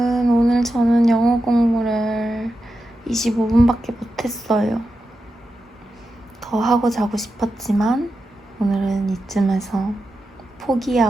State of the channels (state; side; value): normal; both; correlation 0.89